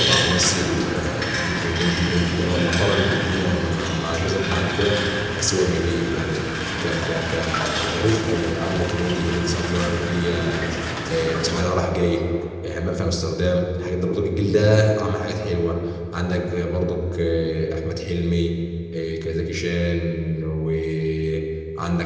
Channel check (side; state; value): both; identical; correlation 1.00